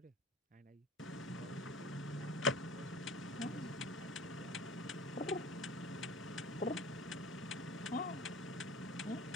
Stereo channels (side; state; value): both; normal; correlation 0.39